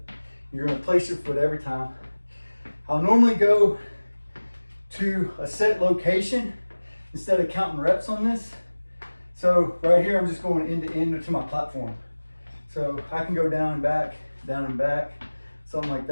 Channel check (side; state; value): both; inverted; correlation -1.00